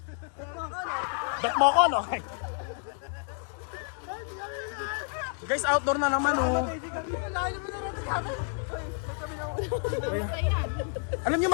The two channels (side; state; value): right; silent; 55 dB below the other